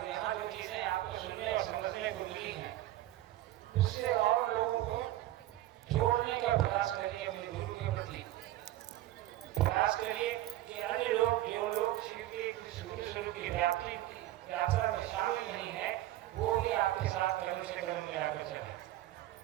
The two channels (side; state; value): left; quieter; 15.0 dB